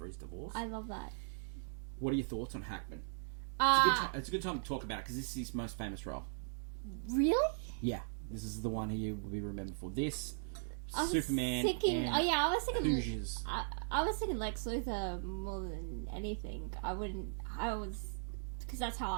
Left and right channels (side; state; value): left; silent; digital silence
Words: his divorce. I love that. What are your thoughts on Hackman? It's a good time to talk about it because this is his most famous role. Really? Yeah, this is the one he will be remembered for. This, I was Superman, thinking, and I was thinking Hoosiers. I was thinking Lex Luthor more than anything. Because that's how